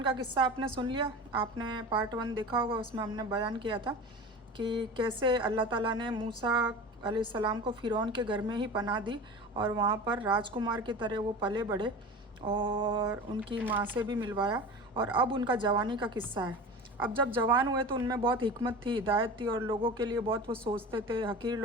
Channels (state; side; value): normal; both; correlation 0.33